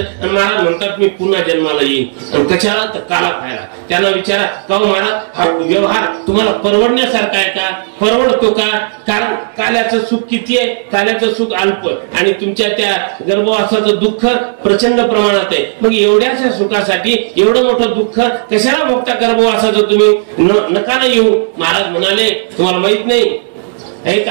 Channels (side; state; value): left; silent; digital silence